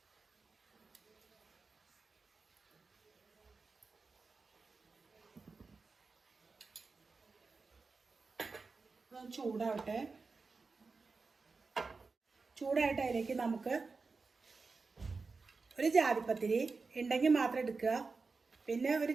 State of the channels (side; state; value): left; quieter; 4.3 dB